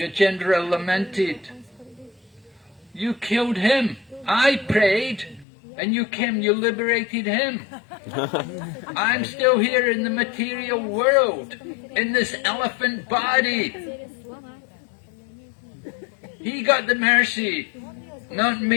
lamented, "You killed him. I prayed, and you came, you liberated him. I'm still here in the material world, in this elephant body. He got the mercy, not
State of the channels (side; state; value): right; drops out; at 5.5 s